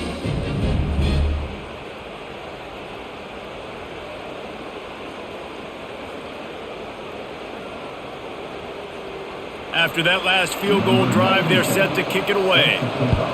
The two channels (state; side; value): identical; both; correlation 1.00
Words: After that last field goal drive, they're set to kick it away.